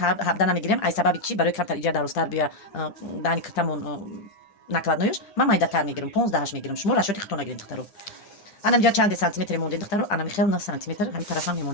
намегирем ай сабаби чӣ барои камтар иҷа дарозтар бия даҳани киртамон накладноёш ман майдатар мегирем 15 мегирем шумо расчёти худтон нагирем духтаро ана инҷа чанде сантиметре мондем духтаро ана михел 9 сантиметр ҳамин тарафам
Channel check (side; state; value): right; late; 10 ms